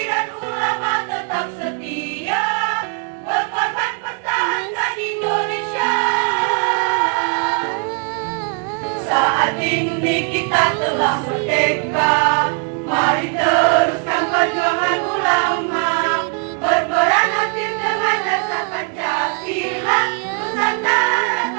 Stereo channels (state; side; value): quieter; left; 36.8 dB